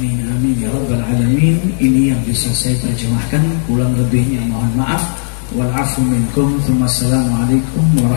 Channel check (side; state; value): right; silent; digital silence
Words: amin ya rabbal alamin. Ini yang bisa saya terjemahkan, kurang lebihnya mohon maaf. Wal afu minkum. Assalamualaikum